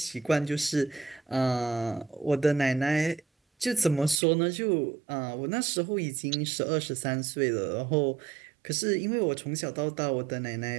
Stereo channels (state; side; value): drops out; left; at 4.2 s